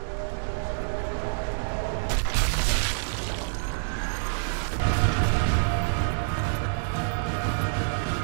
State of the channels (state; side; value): silent; left; digital silence